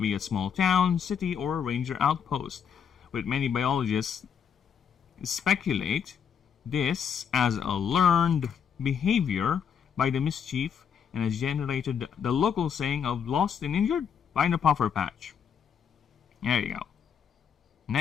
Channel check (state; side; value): quieter; right; 7.5 dB